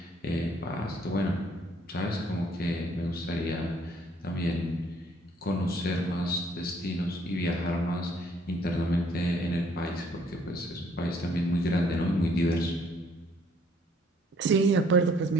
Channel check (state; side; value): normal; both; correlation 0.63